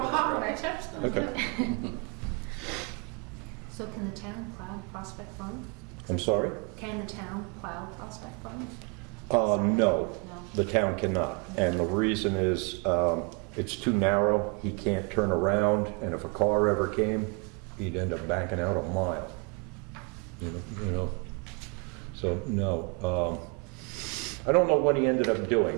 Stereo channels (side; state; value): left; quieter; 32.9 dB